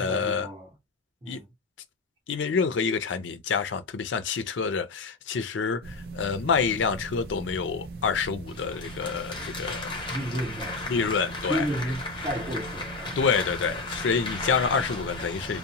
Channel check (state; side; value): quieter; right; 4.2 dB